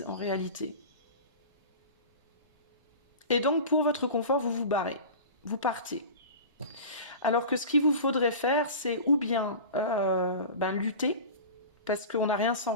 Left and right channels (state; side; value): inverted; both; correlation -0.34